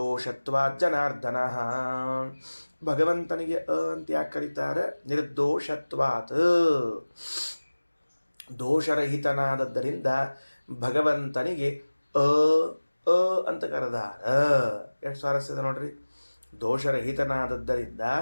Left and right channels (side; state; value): both; inverted; correlation -1.00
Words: ಜನಾರ್ದನ. ಭಗವಂತನಿಗೆ ಅ ಅಂತ ಯಾಕೆ ಕರೀತಾರೆ? ನಿರ್ದೋಷತ್ವಾತ್, ದೋಷರಹಿತನಾದದ್ದರಿಂದ ಭಗವಂತನಿಗೆ ಅ ಅ ಅಂತ ಕರೆದಾರ. ಎಷ್ಟು ಸ್ವಾರಸ್ಯದ ನೋಡ್ರಿ. ದೋಷರಹಿತನಾದದ್ದರಿಂದ